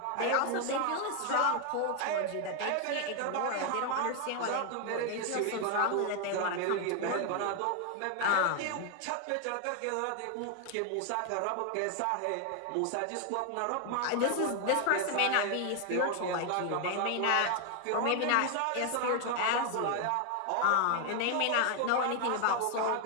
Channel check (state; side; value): different; both; correlation 0.00